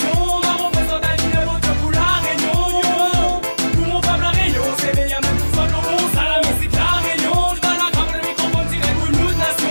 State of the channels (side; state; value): both; inverted; correlation -1.00